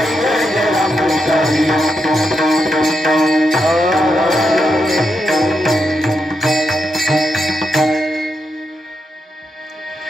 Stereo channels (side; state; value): both; normal; correlation 0.84